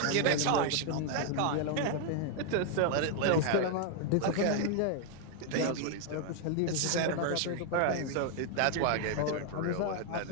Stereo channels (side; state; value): both; different; correlation 0.00